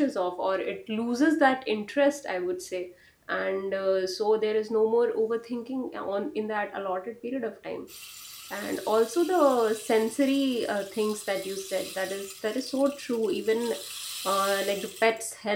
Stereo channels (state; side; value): identical; both; correlation 1.00